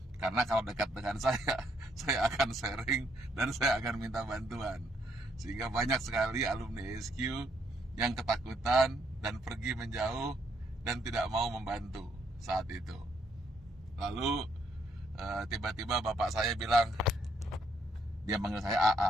Karena kalau dekat dengan saya akan sharing dan saya akan minta bantuan. Sehingga banyak sekali alumni SQ yang ketakutan dan pergi menjauh dan tidak mau membantu saat itu. Lalu tiba-tiba bapak saya bilang, dia manggil saya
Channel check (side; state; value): both; normal; correlation 0.72